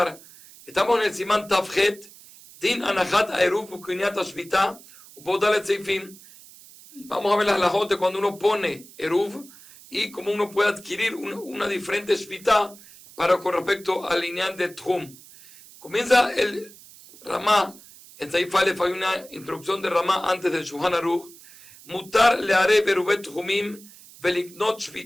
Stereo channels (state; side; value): noise; right; hiss, 21 dB below the sound